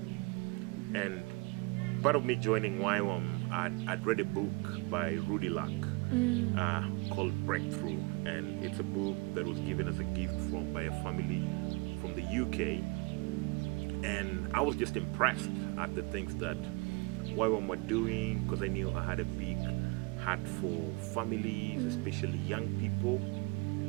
And part of me joining Ywam, I'd read a book by Rudy Luck called Breakthrough. And it's a book that was given as a gift by a family from the UK. And I was just impressed at the things that Ywam were doing, because I knew I had a big heart for families, especially young people,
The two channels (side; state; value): left; quieter; 27.8 dB